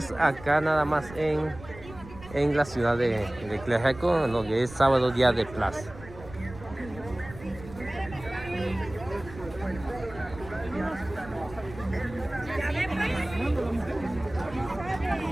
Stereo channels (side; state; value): right; noise; rumble, 16 dB below the sound